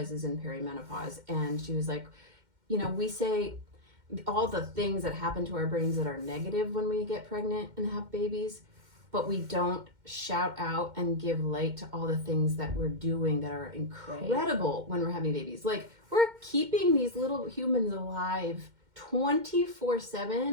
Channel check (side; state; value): left; late; 2.1 ms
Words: in perimenopause, and she was like, we say all the things that happen to our brains that are negative when we get pregnant and have babies, but we don't shout out and give light to all the things that we're doing that are incredible when we're having babies. Like, we're keeping these little humans alive